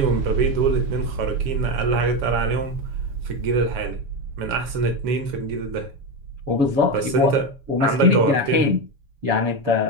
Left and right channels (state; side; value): late; left; 7.2 ms